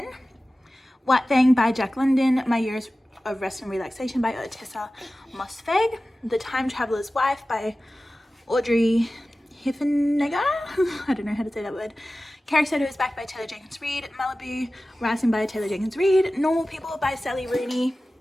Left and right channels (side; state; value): both; normal; correlation 0.96